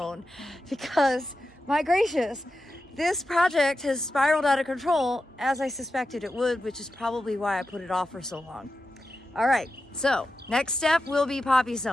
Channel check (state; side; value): normal; both; correlation 0.90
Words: because my gracious, this project has spiraled out of control, as I suspected it would, which is probably why I put it off for so long. All right, so next step will be poppy